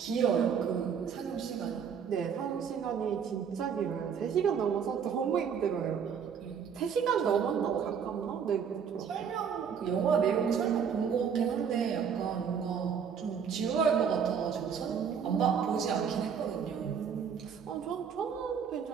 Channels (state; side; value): quieter; left; 7.2 dB